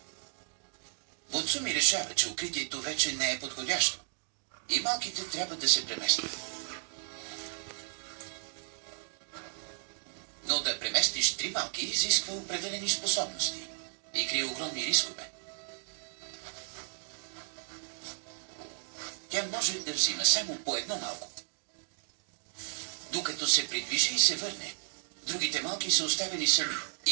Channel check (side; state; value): left; silent; digital silence